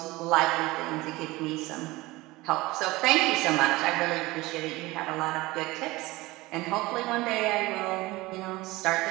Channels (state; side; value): quieter; left; 20.5 dB